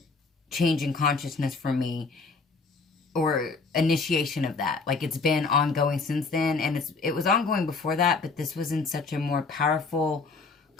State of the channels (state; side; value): quieter; right; 4.2 dB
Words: change in consciousness for me, or initiation of that. Like, it's been ongoing since then, and it was ongoing before that, but this was in such a more powerful,